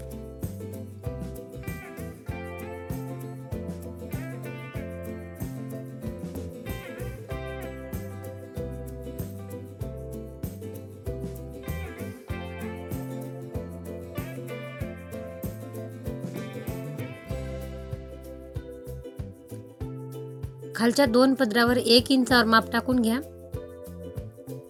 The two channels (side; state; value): both; identical; correlation 1.00